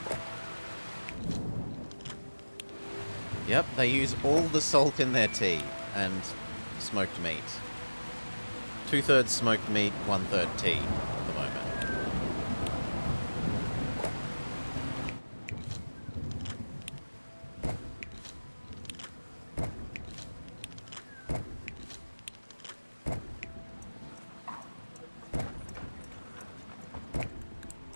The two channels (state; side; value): inverted; both; correlation -1.00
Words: Yep, they use all the salt in their tea and smoked meat. 2/3 smoked meat, 1/3 tea at the moment.